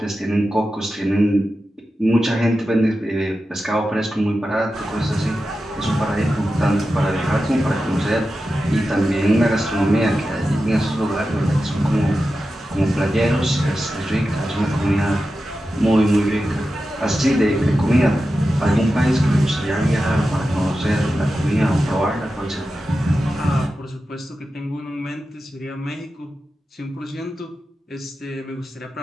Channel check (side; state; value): both; normal; correlation 0.92